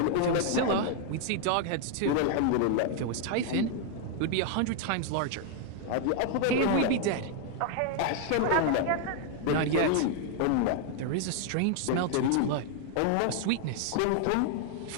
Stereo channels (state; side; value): different; both; correlation 0.00